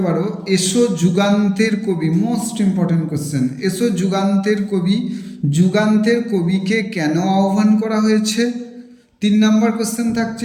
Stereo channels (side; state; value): both; identical; correlation 1.00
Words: পারো, এসো যুগান্তের কবি। মোস্ট ইম্পর্টেন্ট কোশ্চেন, এসো যুগান্তের কবি। যুগান্তের কবিকে কেন আহ্বান করা হয়েছে? 3 নম্বর কোশ্চেন